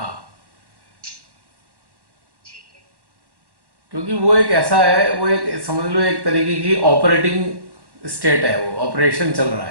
क्योंकि वो एक ऐसा है, वो एक समझ लो एक तरीके की ऑपरेटिंग स्टेट है, वो ऑपरेशन चल रहा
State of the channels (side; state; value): left; late; 1.1 ms